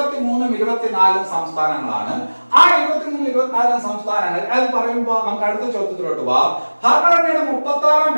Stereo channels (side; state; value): both; inverted; correlation -1.00